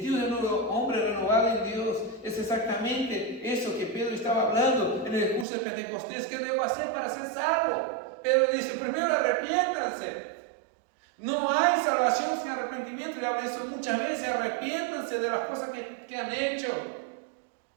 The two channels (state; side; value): drops out; left; at 5.5 s